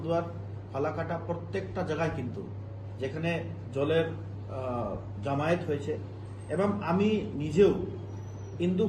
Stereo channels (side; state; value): both; identical; correlation 1.00